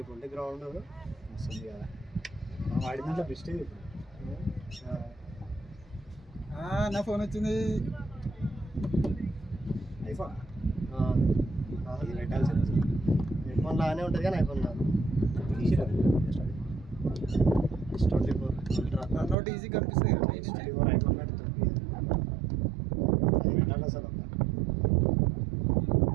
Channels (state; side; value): drops out; left; at 19.4 s